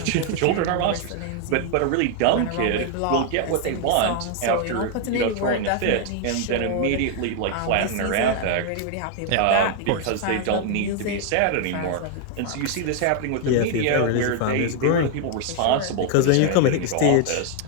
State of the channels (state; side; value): different; both; correlation 0.01